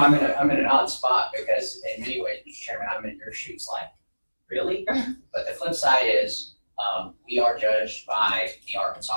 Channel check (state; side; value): inverted; both; correlation -1.00